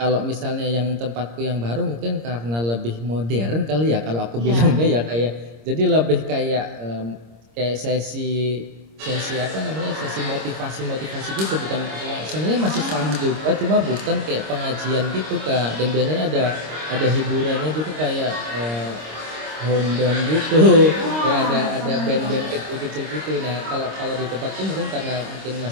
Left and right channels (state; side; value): late; left; 26 ms